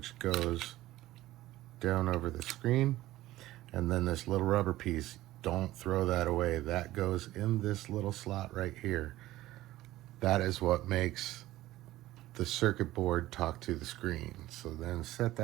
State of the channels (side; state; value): left; quieter; 16.0 dB